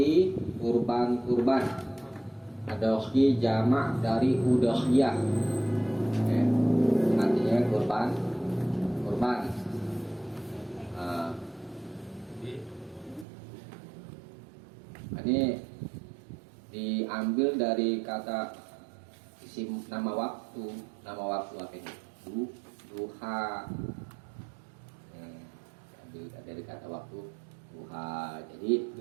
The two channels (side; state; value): left; drops out; at 13.2 s